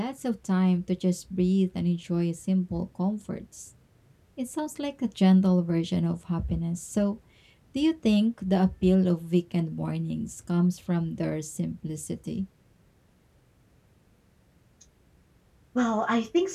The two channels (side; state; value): both; identical; correlation 1.00